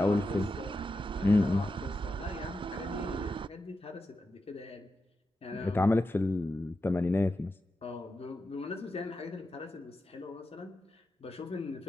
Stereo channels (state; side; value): normal; both; correlation 0.89